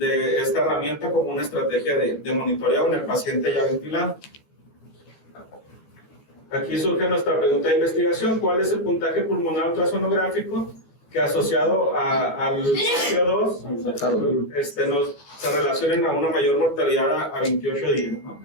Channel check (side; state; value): right; late; 14 ms